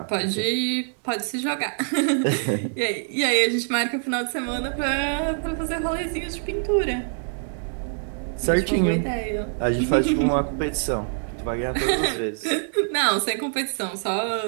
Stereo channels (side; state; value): left; silent; digital silence